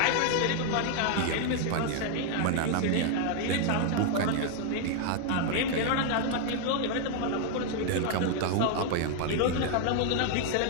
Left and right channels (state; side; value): different; both; correlation 0.00